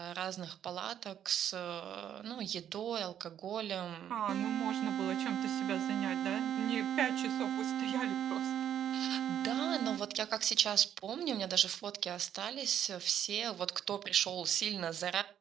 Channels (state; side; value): quieter; left; 9.8 dB